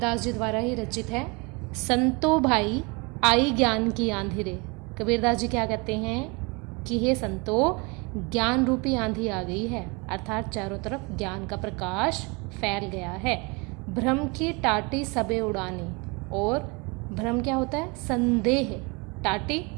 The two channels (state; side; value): quieter; left; 29.1 dB